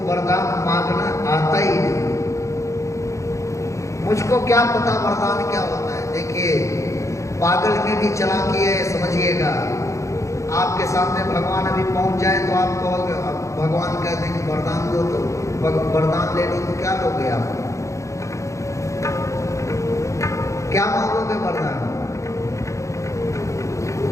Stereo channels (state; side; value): late; right; 0.15 ms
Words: वरदान मांगना आता ही नहीं, मुझको क्या पता वरदान क्या होता है। देखिए पागल में भी चालाकी है, समझिएगा। आपके सामने भगवान अभी पहुंच जाए तो आप कहोगे, भगवान कहते हैं कि वरदान दो, तो वरदान ले लो, तो क्या लोगे आप? क्या मांगोगे वरदान?